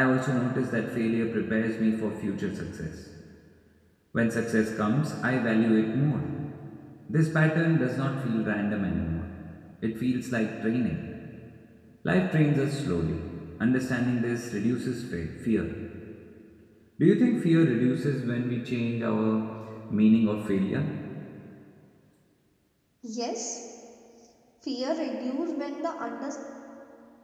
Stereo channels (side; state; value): both; identical; correlation 1.00